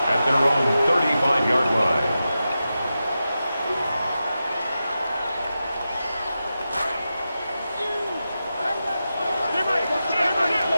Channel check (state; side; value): inverted; both; correlation -0.91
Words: at their own 35-yard line.